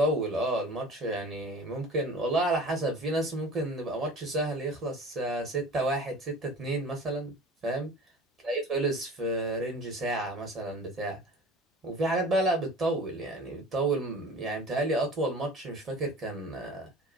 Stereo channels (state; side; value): normal; both; correlation 0.40